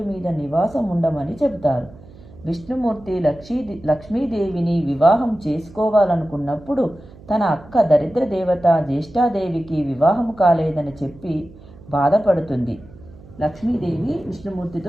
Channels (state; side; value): noise; right; hum, 21 dB below the sound